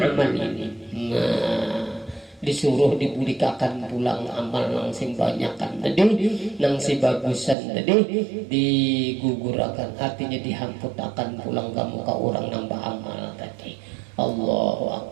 amal ini. Nah, disuruh dibulikakan pulang amal nang sing banyakan tadi, nang si bagusan tadi digugurakan, artinya dihamputakan pulang ke muka orang nang beramal tadi. Allahu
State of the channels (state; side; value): drops out; left; at 7.6 s